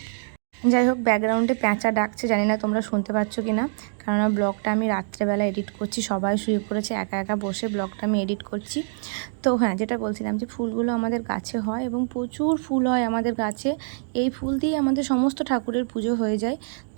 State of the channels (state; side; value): silent; left; digital silence